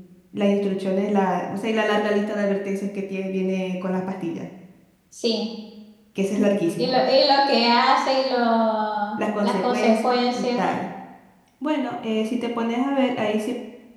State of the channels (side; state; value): both; identical; correlation 1.00